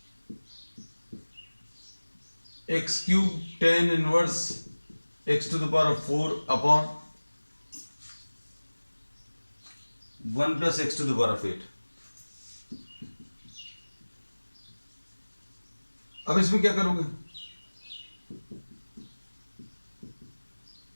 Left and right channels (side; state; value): both; inverted; correlation -1.00